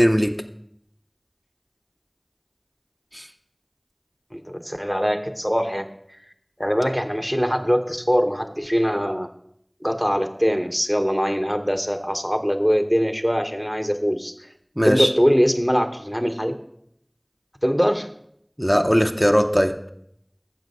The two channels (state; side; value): identical; both; correlation 1.00